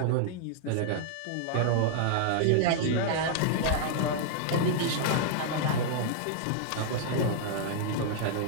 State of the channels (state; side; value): different; both; correlation -0.01